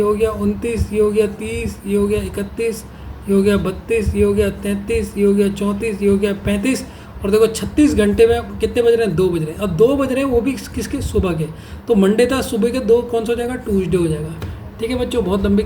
हो गया 29, ये हो गया 30, ये हो गया 31, ये हो गया 32, ये हो गया 33, ये हो गया 34, ये हो गया 35, और देखो 36 घंटे में कितने बज रहे हैं, 2 बज रहे हैं। अब 2 बज रहे हैं वो भी किसके, सुबह के, तो मंडे था, सुबह के 2 कौन सा हो जाएगा, ट्यूसडे हो जाएगा। ठीक है बच्चों, बहुत लंबी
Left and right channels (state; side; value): identical; both; correlation 1.00